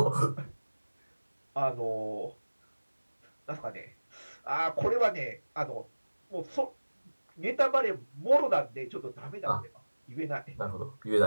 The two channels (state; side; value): inverted; both; correlation -1.00